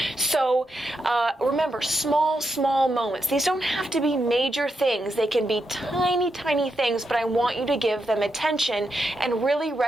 So remember, small moments. These don't have to be major things. They can be tiny things, but I want you to give them attention and really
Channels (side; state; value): both; normal; correlation 0.84